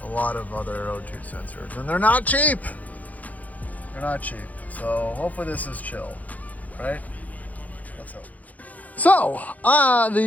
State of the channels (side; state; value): right; late; 0.076 ms